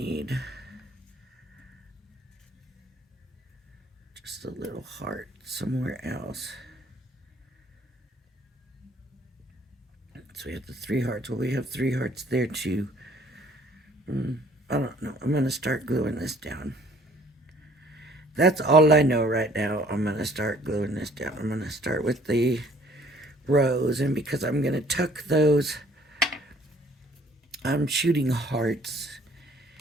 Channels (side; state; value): both; normal; correlation 0.58